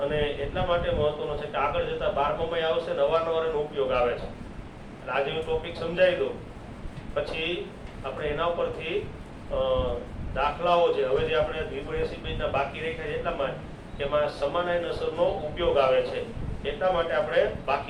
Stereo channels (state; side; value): identical; both; correlation 1.00